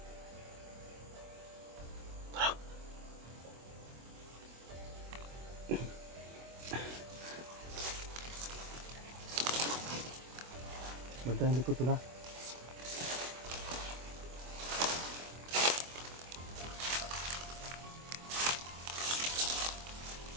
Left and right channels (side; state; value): left; late; 24 ms